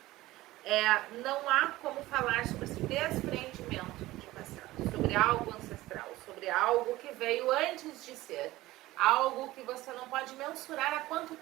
Não há como falar sobre esse desprendimento de passado, sobre algo ancestral, sobre algo que veio antes de ser, algo que você não pode mensurar há quanto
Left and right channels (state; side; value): quieter; left; 17.5 dB